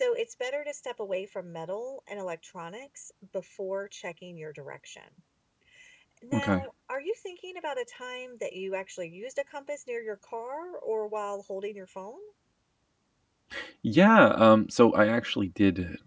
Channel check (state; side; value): identical; both; correlation 1.00